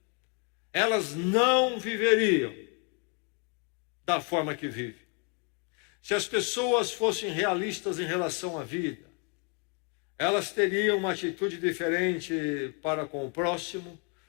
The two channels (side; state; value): right; quieter; 34.8 dB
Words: elas não viveriam da forma que vivem. Se as pessoas fossem realistas em relação à vida, elas teriam uma atitude diferente para com o próximo,